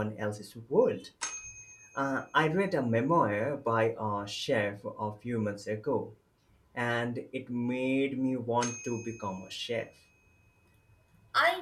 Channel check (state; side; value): identical; both; correlation 1.00